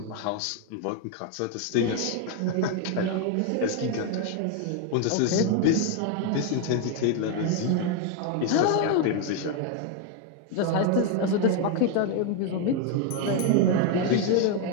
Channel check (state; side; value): different; both; correlation 0.01